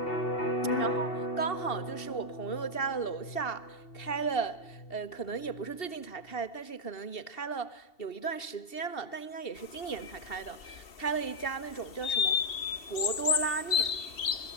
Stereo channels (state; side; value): late; right; 2.7 ms